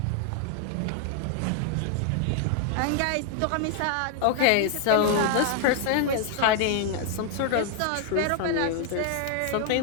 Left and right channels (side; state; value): both; different; correlation 0.00